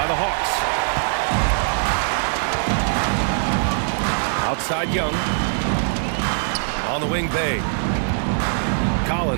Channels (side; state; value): left; silent; digital silence